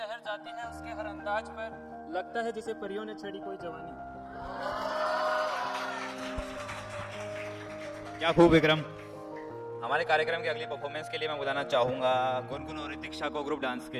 जाती है उसके हर अंदाज पर, लगता है जैसे परियों ने छेड़ी कोई जवानी। क्या खूब विक्रम। हमारे कार्यक्रम के अगली परफॉर्मेंस के लिए मैं बुलाना चाहूँगा गुनगुन और ऋतिक्षा को ग्रुप डांस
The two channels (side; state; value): both; identical; correlation 1.00